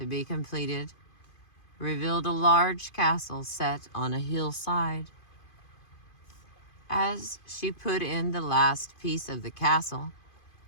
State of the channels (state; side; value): late; right; 2.5 ms